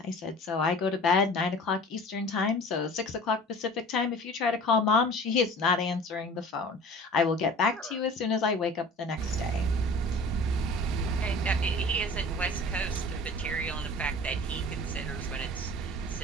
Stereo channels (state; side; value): normal; both; correlation 0.43